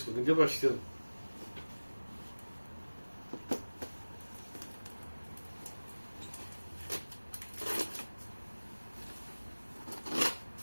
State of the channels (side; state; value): both; inverted; correlation -1.00